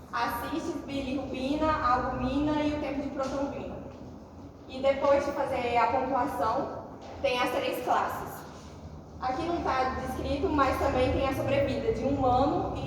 a cistis, bilirrubina, a albumina e o tempo de protrombina. E depois de fazer a pontuação, tem as 3 classes. Aqui não está descrito, mas também tem a sobrevida de 1 ano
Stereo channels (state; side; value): identical; both; correlation 1.00